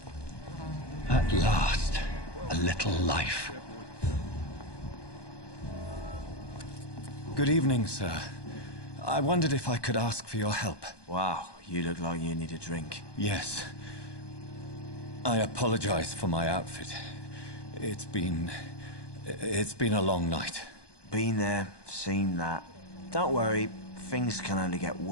At last, a little life. Good evening, sir. I wondered if I could ask for your help. Wow, you look like you need a drink. Yes. I apologize for my outfit. It's been a long night. Been there, seen that. Don't worry, things can only get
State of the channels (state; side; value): late; right; 1.2 ms